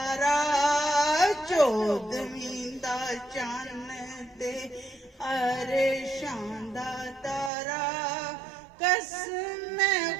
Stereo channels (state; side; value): drops out; left; at 7.5 s